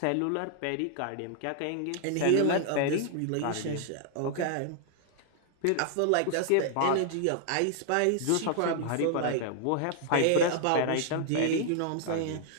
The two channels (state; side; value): different; both; correlation 0.00